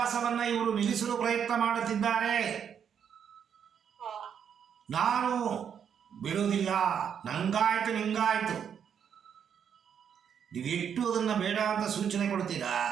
ಇವರು ನಿಲ್ಲಿಸಲು ಪ್ರಯತ್ನ ಮಾಡುತ್ತಿದ್ದಾರೆ, ನಾನು ಬಿಡೋದಿಲ್ಲ, ನಂಗಾಯ್ತು ನಿಂಗಾಯ್ತು. ನೀವು ಎಷ್ಟು ಅದನ್ನು ಬೇಡ ಅಂತ ಸೂಚನೆ ಕೊಡ್ತೀರಾ,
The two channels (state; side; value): quieter; left; 8.0 dB